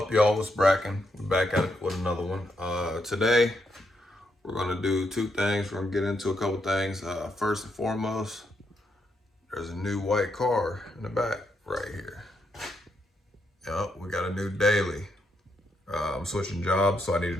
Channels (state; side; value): normal; both; correlation 0.79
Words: y'all? It's Bracken. We're back at it with another one. Today, we're going to do two things. We're going to get into a couple things. First and foremost, there's a new white car in the back right here. Yep, we got a new daily. I'm switching jobs, so I